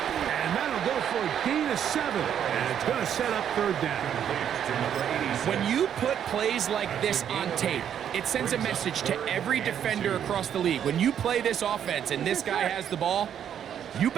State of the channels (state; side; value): quieter; left; 9.2 dB